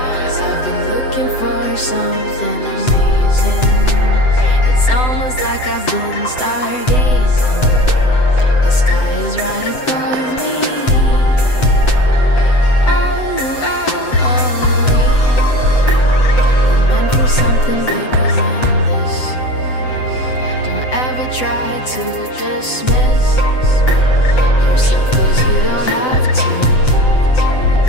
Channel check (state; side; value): late; right; 7.9 ms